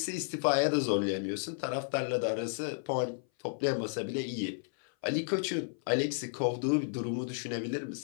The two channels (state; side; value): silent; right; 56 dB below the other